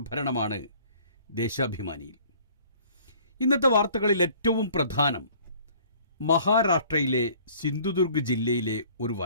ദേശാഭിമാനിയിൽ. ഇന്നത്തെ വാർത്തകളിൽ ഏറ്റവും പ്രധാനം മഹാരാഷ്ട്രയിലെ സിന്ധുദുർഗ് ജില്ലയിലെ ഒരു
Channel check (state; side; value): inverted; both; correlation -0.54